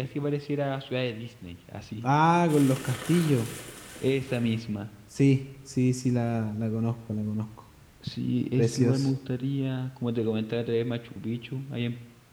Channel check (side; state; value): both; identical; correlation 1.00